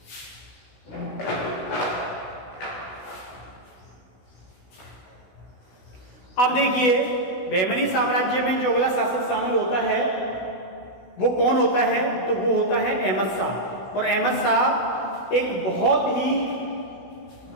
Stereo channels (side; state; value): right; late; 16 ms